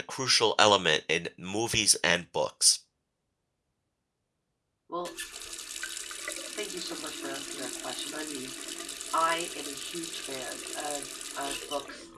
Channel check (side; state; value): both; identical; correlation 1.00